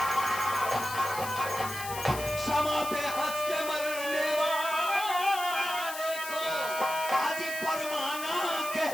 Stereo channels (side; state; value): left; noise; hiss, 9 dB below the sound